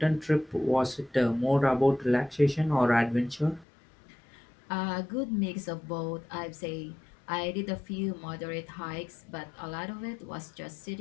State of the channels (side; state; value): right; drops out; at 3.7 s